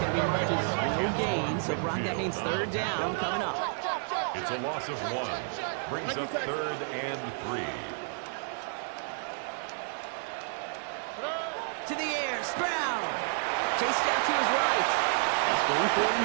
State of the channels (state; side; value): silent; left; 57 dB below the other